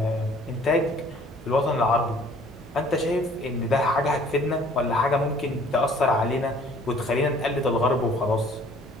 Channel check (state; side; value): normal; both; correlation 0.55